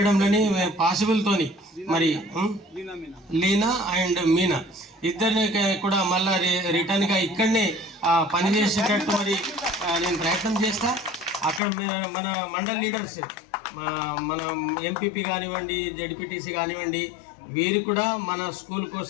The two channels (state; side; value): drops out; right; at 11.6 s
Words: పాసిబుల్తోని మరి లీనా అండ్ మీనా ఇద్దరిని కూడా మళ్ళా రిటర్న్గా ఇక్కడనే పనిచేసేటట్టు మరి నేను ప్రయత్నం చేస్తా. అక్కడ మన మండల్ లీడర్స్ మన ఎంపీపీ కానివ్వండి, జడ్పీటీసీ కానివ్వండి, వీరు కూడా మన స్కూల్